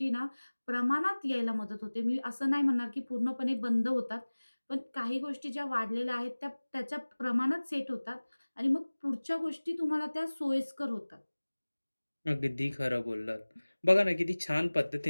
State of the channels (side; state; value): both; inverted; correlation -1.00